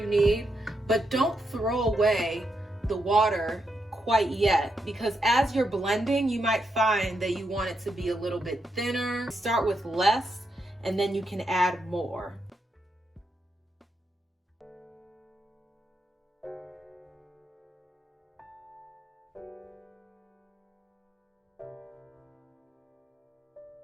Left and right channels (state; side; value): normal; both; correlation 0.82